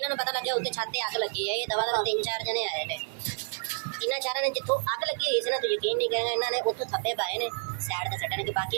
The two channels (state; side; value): silent; left; 58 dB below the other